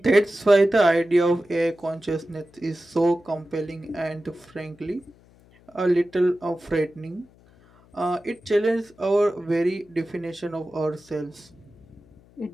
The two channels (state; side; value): noise; left; hum, 28 dB below the sound